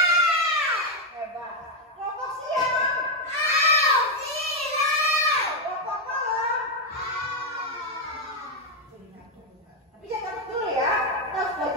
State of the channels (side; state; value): both; normal; correlation 0.03